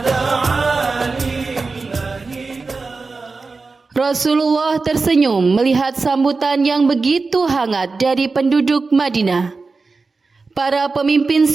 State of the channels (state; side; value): quieter; left; 4.1 dB